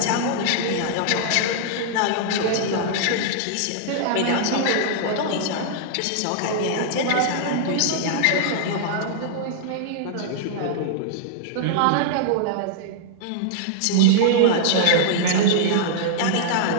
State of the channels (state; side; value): different; both; correlation -0.01